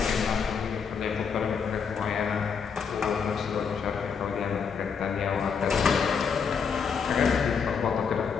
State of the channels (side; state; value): right; quieter; 6.3 dB